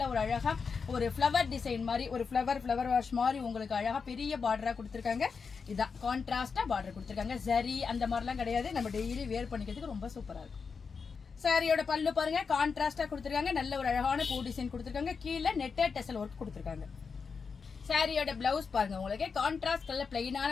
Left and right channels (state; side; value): quieter; right; 5.4 dB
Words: ஒரு அழகா ஒரு ஃபிளவர் டிசைன் மாதிரி ஒரு ஃபிளவர் வாஷ் மாதிரி உங்களுக்கு அழகா பெரிய பார்டரா கொடுத்துருக்காங்க. இதான் கான்ட்ராஸ்டா பார்டர் கொடுத்துருக்காங்க. ஜரி அந்த மாதிரிலாம் கிடையாது. நம்ம டெய்லி வேர் பண்ணிக்கிறதுக்கு ரொம்ப சூப்பரா இருக்கும். சாரியோட பல்லு பாருங்க, கான்ட்ராஸ்டா கொடுத்துருக்காங்க. நல்ல ஒரு அழகான பூ டிசைன் கொடுத்துருக்காங்க. கீழே நெட்டட் டெசல் ஒர்க் கொடுத்துருக்காங்க. சாரியோட பிளவுஸ் பாருங்க, உங்களுக்கு கான்ட்ராஸ்ட் கலர் பிளைனான